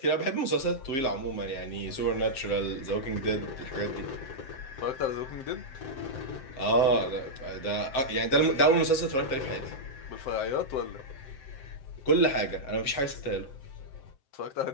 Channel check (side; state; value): right; late; 7.7 ms